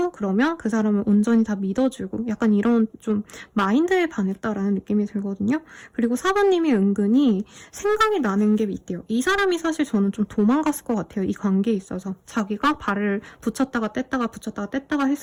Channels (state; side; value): identical; both; correlation 1.00